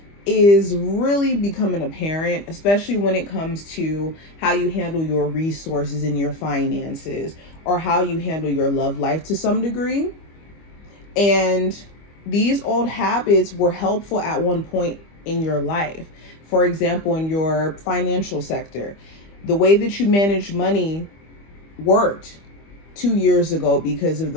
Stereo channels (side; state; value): right; late; 25 ms